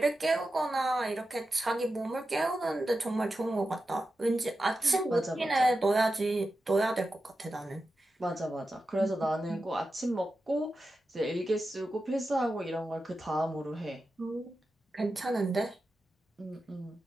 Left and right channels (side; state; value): both; normal; correlation 0.91